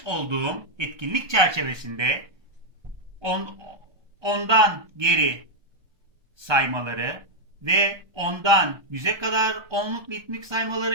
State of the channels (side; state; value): left; late; 1.3 ms